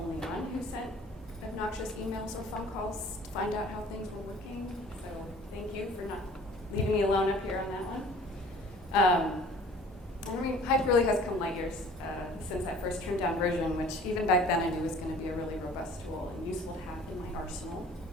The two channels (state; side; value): normal; both; correlation 0.49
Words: one who sent obnoxious emails or phone calls to find out how things were working. So thank you for not leaving me alone up here on that one. Hype really has come light years since that first trimmed down version, which even back then I knew was going to be a really robust tool and useful to have in my arsenal.